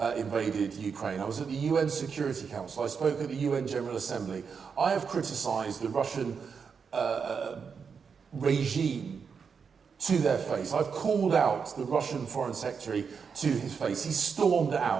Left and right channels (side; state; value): left; quieter; 6.0 dB